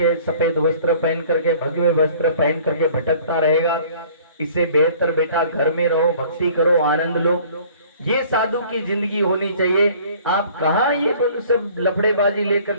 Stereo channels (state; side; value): inverted; both; correlation -0.52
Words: सफेद वस्त्र पहन करके, भगवे वस्त्र पहन करके भटकता रहेगा। इससे बेहतर बेटा घर में रहो, भक्ति करो, आनंद लो। ये साधु की जिंदगी होनी चाहिए। आप कहाँ ये सब लफड़ेबाजी लेकर